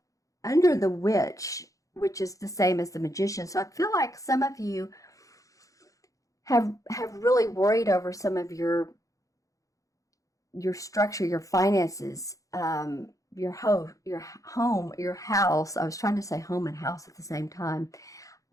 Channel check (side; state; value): right; late; 0.16 ms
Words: under the Witch, which is the same as the Magician. So I feel like some of you have really worried over some of your structure, your finances, your home, your house. I was trying to say home and house at the same time.